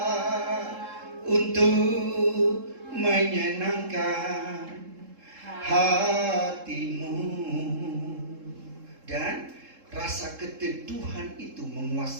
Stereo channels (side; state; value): left; late; 3.7 ms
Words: untuk menyenangkan hatimu. Dan rasa keteduhan itu